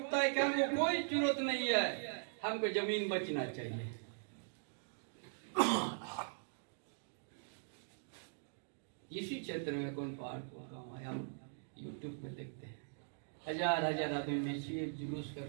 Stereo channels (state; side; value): silent; left; digital silence